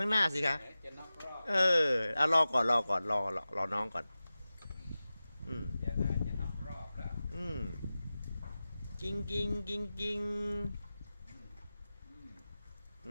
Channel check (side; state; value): both; inverted; correlation -0.95